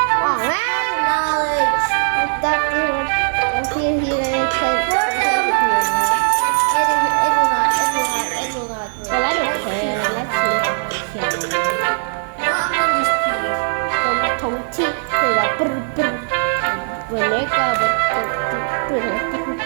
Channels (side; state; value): left; silent; 67 dB below the other